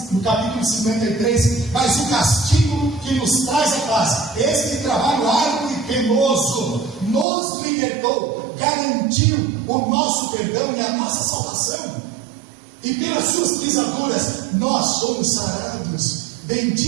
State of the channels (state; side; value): drops out; left; at 7.2 s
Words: no capítulo 53, mas o castigo que nos traz a paz, este trabalho árduo e penoso, nos libertou, garantiu o nosso perdão e a nossa salvação. E pelas suas pisaduras nós somos sarados.